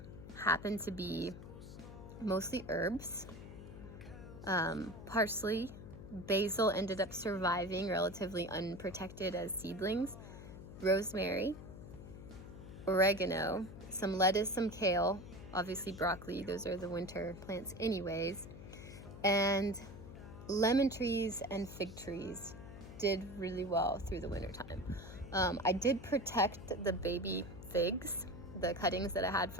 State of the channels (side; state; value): left; noise; hum, 13 dB below the sound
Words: happened to be mostly herbs. Parsley, basil ended up surviving relatively unprotected as seedlings, rosemary, oregano, some lettuce, some kale, obviously broccoli, those are the winter plants anyways, and lemon trees and fig trees did really well through the winter time. I did protect the baby figs, the cuttings that I had